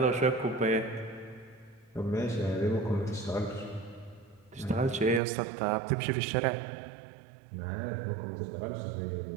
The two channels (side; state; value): left; drops out; at 5.2 s